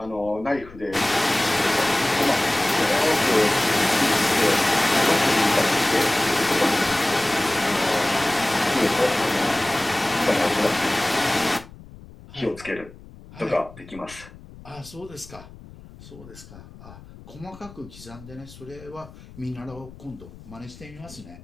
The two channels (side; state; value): left; noise; rumble, 19 dB below the sound